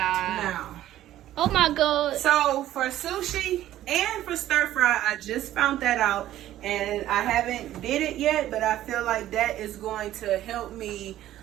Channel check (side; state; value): left; quieter; 13.3 dB